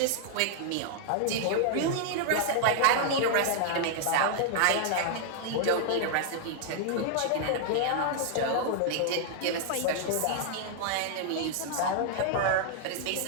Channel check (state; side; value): different; both; correlation -0.01